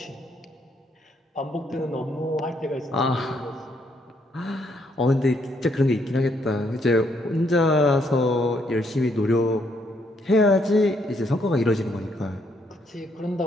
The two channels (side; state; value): both; normal; correlation 0.72